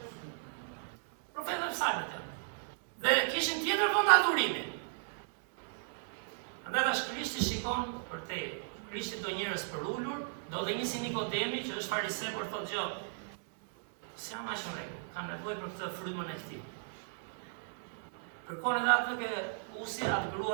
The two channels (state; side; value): silent; left; digital silence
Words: Profetët e psalmet janë. Dhe kishin tjetër vend adhurimi. Andaj tash Krishti shikon për te. Krishti do njerëz për ulur, do dhe një si Nikodemi që është fariseu por thotë gjë. S'jam aq në rregull, kam nevojë për këtë frymën e këtij. Kërkon edhe atë ke usi, atë